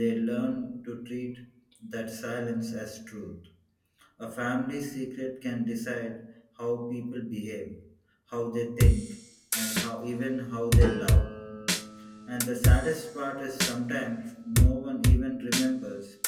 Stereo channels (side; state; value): both; identical; correlation 1.00